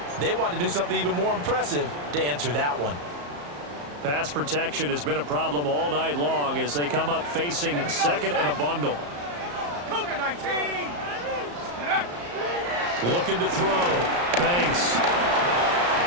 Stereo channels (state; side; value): late; left; 34 ms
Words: they want to do something even more impressive to answer that one. Pass protection has been a problem all night long as they come up facing 2nd and a bundle. Cougar 19. Looking to throw. Banks.